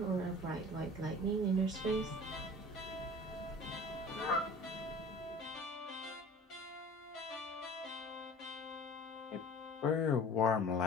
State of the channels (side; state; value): both; normal; correlation 0.43